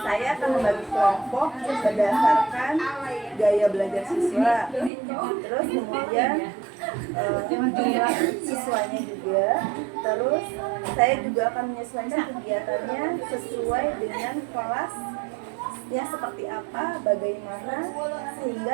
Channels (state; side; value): drops out; left; at 4.9 s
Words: akan membagi kelompok berdasarkan gaya belajar siswa. Terus kemudian jumlah siswanya juga. Terus saya juga akan menyesuaikan kegiatannya sesuai dengan kelas ya seperti apa, bagaimana, sehingga